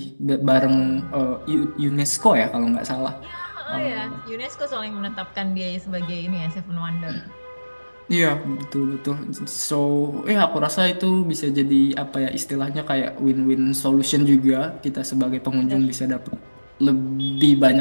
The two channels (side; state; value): both; inverted; correlation -1.00